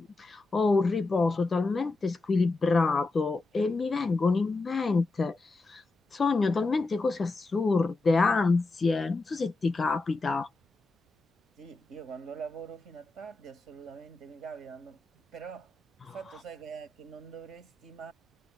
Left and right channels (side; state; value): right; quieter; 3.4 dB